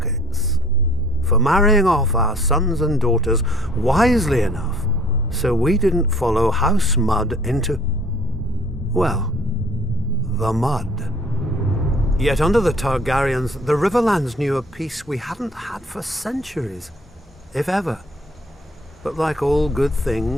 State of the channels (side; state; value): both; normal; correlation 0.55